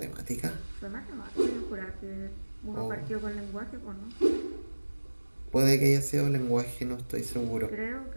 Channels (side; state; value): both; inverted; correlation -1.00